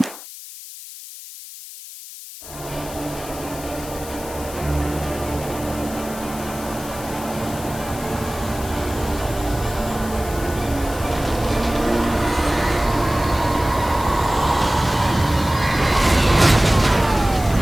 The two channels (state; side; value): noise; left; hiss, 14 dB below the sound